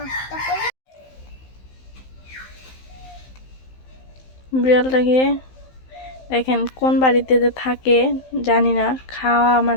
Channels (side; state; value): right; late; 15 ms